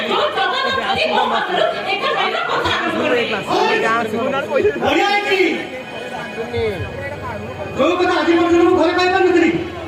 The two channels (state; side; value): identical; both; correlation 1.00